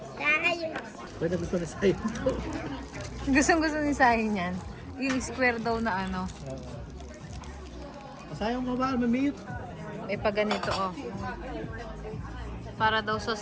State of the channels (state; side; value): identical; both; correlation 1.00